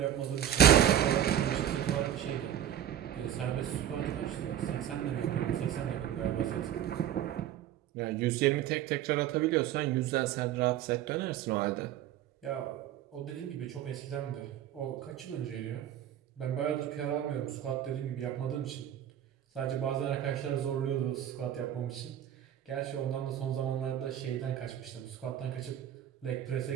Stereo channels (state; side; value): quieter; left; 10.9 dB